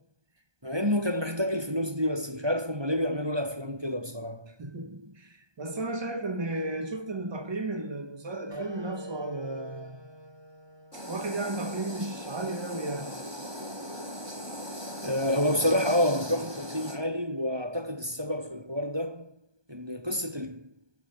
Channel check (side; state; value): left; late; 1.2 ms